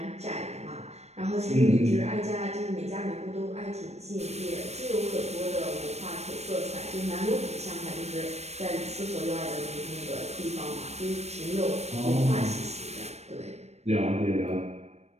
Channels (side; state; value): left; late; 0.31 ms